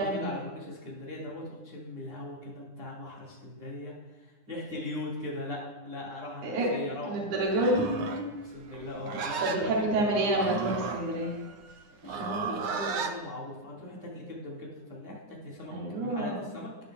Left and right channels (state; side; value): late; left; 9.8 ms